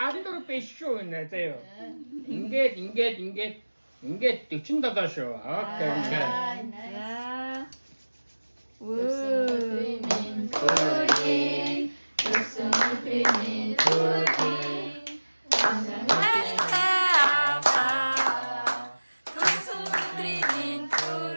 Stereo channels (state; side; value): inverted; both; correlation -1.00